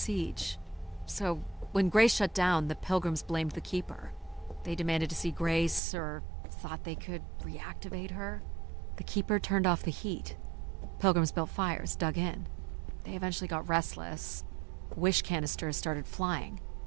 So, when Grace shut down, the Pilgrims blamed the Keeper. They demanded to see Grace, or thought they could reactivate her. The Keeper turned off the heat. Pilgrims built fires, dug in. They eventually got restless. Wish canisters started flying.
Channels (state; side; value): drops out; left; at 5.8 s